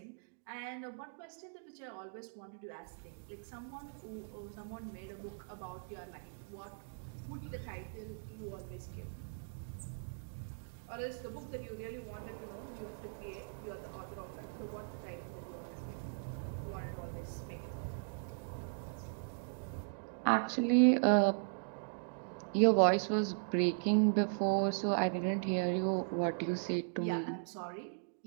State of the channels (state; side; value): silent; left; digital silence